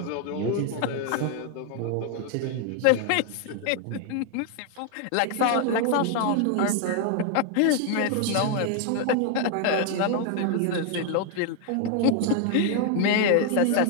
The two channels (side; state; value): both; different; correlation 0.00